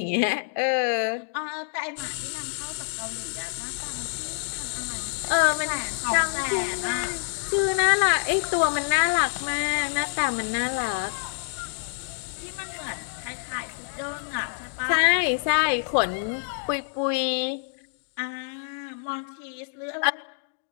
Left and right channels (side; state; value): right; silent; digital silence